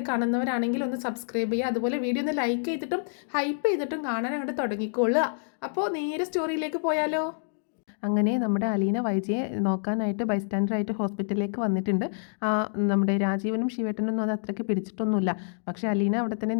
കാണുന്നവരാണെങ്കിൽ ഒന്ന് സബ്സ്ക്രൈബ് ചെയ്യുക. അതുപോലെ വീഡിയോ ഒന്ന് ലൈക്ക് ചെയ്തിട്ടും ഹൈപ്പ് ചെയ്തിട്ടും കാണാൻ അങ്ങോട്ട് തുടങ്ങിക്കൊള്ളുക. അപ്പോൾ നേരെ സ്റ്റോറിയിലേക്ക് പോയാലോ. അങ്ങനെ നമ്മുടെ അലീന വൈജയെ നോക്കാനായിട്ട് ബൈസ്റ്റാൻഡറായിട്ട് ഹോസ്പിറ്റലിലേക്ക് വന്നിട്ടുണ്ട്. നമ്മുടെ രാജീവനും ശിവേട്ടനൊന്നും അത് അത്രയ്ക്ക് പിടിച്ചിട്ടൊന്നുമില്ല. പക്ഷേ അലീന അവിടെ തന്നെ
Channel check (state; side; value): silent; right; digital silence